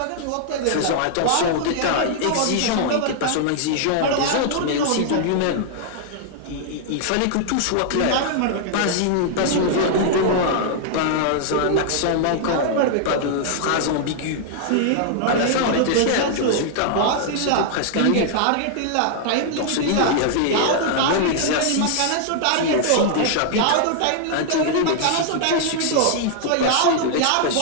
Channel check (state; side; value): different; both; correlation -0.01